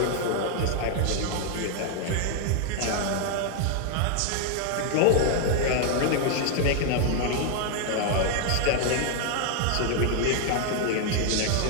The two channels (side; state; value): both; different; correlation 0.00